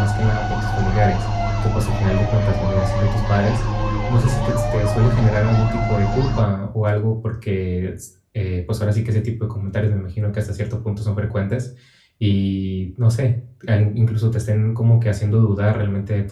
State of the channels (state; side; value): identical; both; correlation 1.00